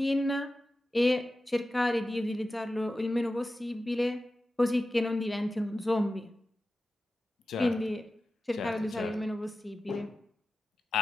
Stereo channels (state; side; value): normal; both; correlation 0.93